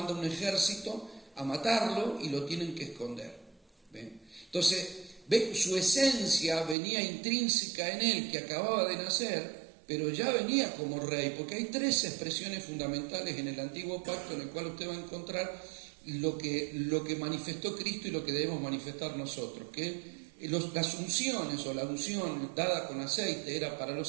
un ejército a matarlo y lo tienen que esconder. Entonces, su esencia venía intrínseca en él, que acababa de nacer, pero ya venía como rey, porque hay tres expresiones fundamentales en el Antiguo Pacto en el cual usted va a encontrar lo que manifestó Cristo y lo que debemos manifestar nosotros, que las unciones o la unción dada con aceite era para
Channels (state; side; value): drops out; left; at 6.8 s